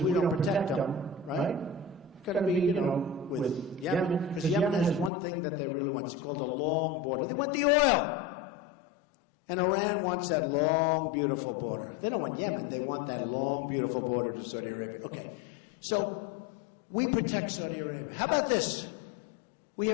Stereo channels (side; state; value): right; drops out; at 5.1 s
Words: we don't protect them, right? It's going to be, you know, with Yemen, because Yemen has one thing that they really want, it's called a long border. They want the oil. And Iran wants that long, beautiful border. They don't want Yemen, they want that long, beautiful border to Saudi Arabia. Okay. So we protect Saudi Arabia. How about this?